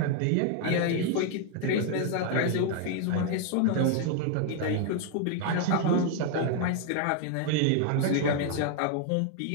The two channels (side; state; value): both; different; correlation 0.00